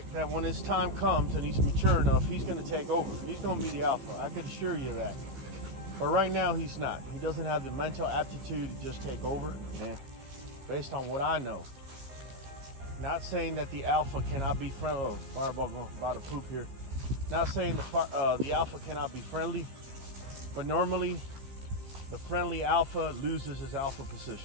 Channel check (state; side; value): late; left; 15 ms